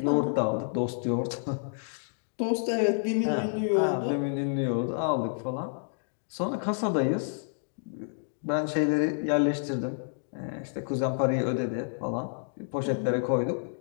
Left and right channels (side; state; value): right; silent; digital silence